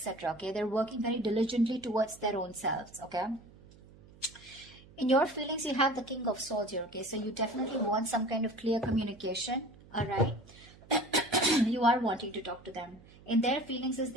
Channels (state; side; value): noise; right; hum, 23 dB below the sound